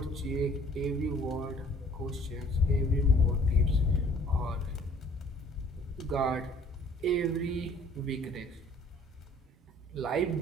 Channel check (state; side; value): normal; both; correlation 0.55